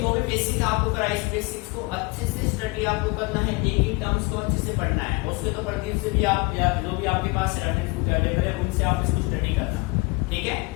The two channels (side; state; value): right; quieter; 26.2 dB